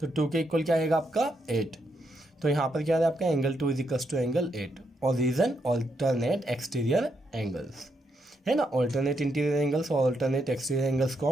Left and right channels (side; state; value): both; normal; correlation 0.79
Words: तो 2 के इक्वल क्या आएगा, आपका 8। तो यहाँ पर क्या है आपका angle 2 is equals to angle 8। और रीजन ऑल्टरनेट एक्सटीरियर एंगल्स, है ना। ऑल्टरनेट इंटीरियर एंगल्स और ऑल्टरनेट एक्सटीरियर एंगल्स को